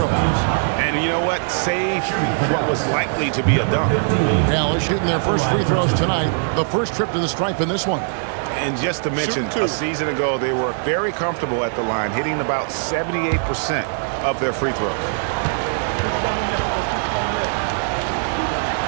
And you know what? Save what was likely to be a dunk. Dallas shooting their first free throws tonight. The first trip to the stripe in this one. And just to mention, a season ago, they were very comfortable at the line, hitting about 78% of their free throws.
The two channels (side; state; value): left; silent; digital silence